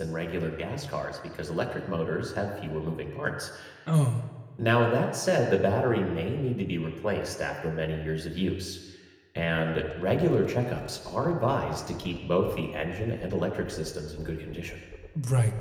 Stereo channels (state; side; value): identical; both; correlation 1.00